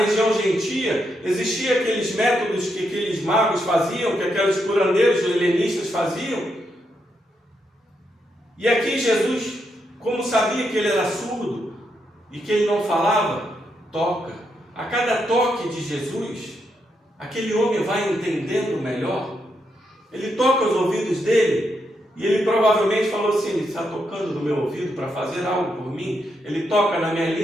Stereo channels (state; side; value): normal; both; correlation 0.81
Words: gentia existiam aqueles métodos que aqueles magos faziam, que aqueles curandeiros helenistas faziam. E aqui Jesus, como sabia que ele era surdo e que ele não falava, toca. A cada toque de Jesus, aquele homem vai entendendo melhor. Ele toca os ouvidos dele. E ele provavelmente falou assim: ele está tocando no meu ouvido para fazer algo por mim. Ele toca na minha